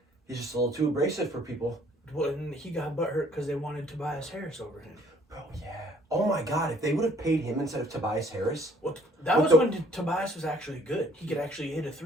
He's just a little too abrasive for people. Well, and he got butthurt because they wanted Tobias Harris over him. Bro, yeah. Oh my God, if they would have paid him instead of Tobias Harris. Well, that was when Tobias was actually good. He could actually hit a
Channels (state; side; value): normal; both; correlation 0.60